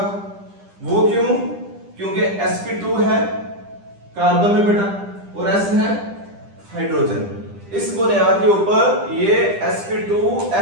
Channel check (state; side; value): late; left; 10 ms